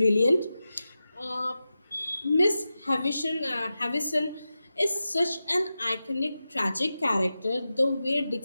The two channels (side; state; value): both; inverted; correlation -0.93